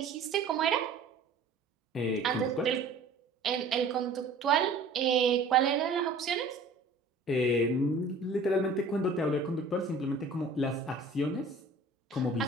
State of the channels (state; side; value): quieter; left; 3.2 dB